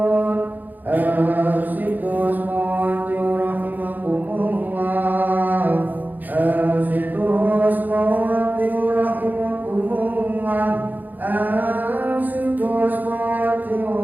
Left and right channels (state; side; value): late; left; 0.085 ms